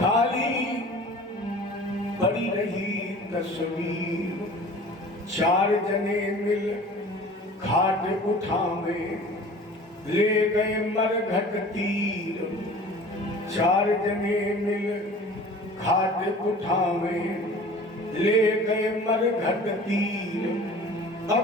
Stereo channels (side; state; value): both; normal; correlation 0.44